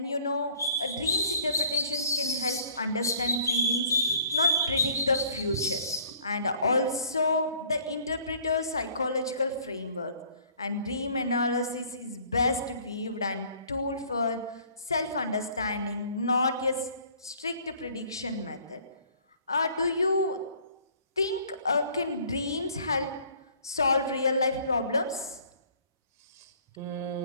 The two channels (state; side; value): inverted; both; correlation -0.56